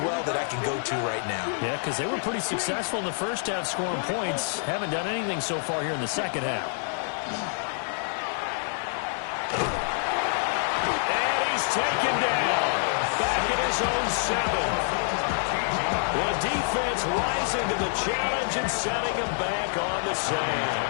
that I can go to right now? Yeah, because they were pretty successful in the first half scoring points. Haven't done anything so far here in the second half. And he's taken down. Back in his own 7. The defense rising to the challenge and setting him back on the sand.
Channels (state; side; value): silent; right; 60 dB below the other